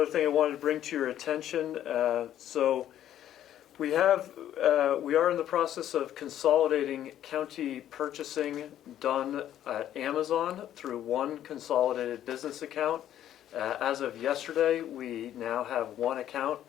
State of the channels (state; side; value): quieter; right; 11.5 dB